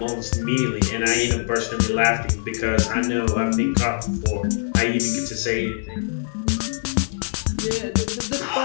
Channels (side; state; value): right; silent; 57 dB below the other